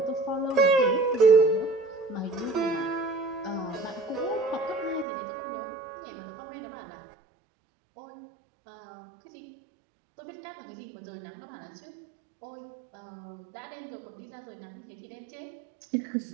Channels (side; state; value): left; drops out; at 5.1 s